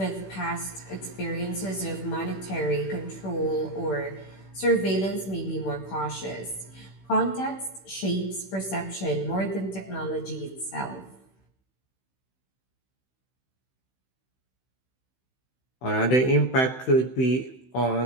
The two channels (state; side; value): late; right; 16 ms